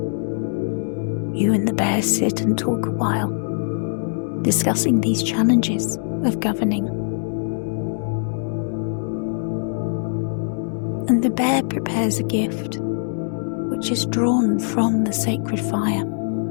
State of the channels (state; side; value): silent; right; digital silence